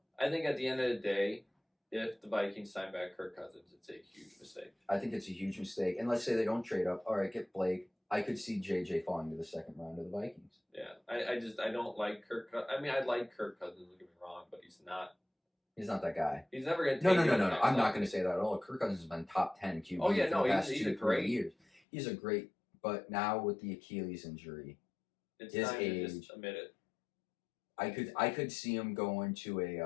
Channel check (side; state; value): right; drops out; at 21.8 s